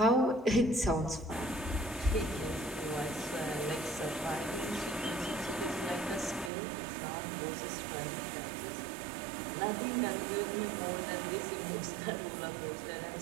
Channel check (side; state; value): left; drops out; at 6.5 s